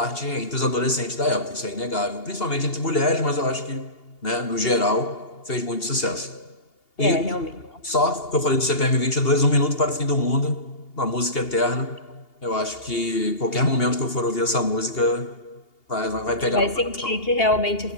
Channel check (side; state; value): right; late; 2.8 ms